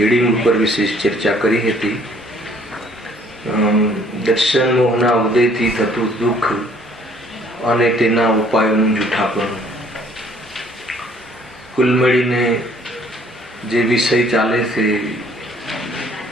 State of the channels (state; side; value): normal; both; correlation 0.60